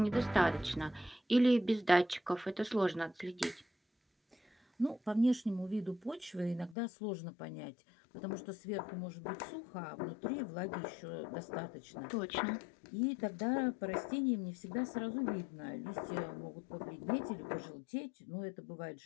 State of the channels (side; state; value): right; drops out; at 6.8 s